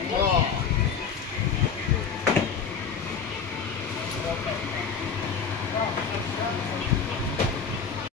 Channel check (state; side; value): quieter; right; 6.2 dB